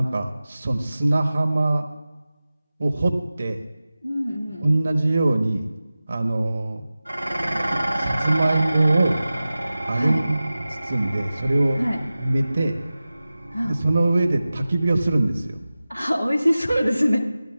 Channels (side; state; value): both; inverted; correlation -0.96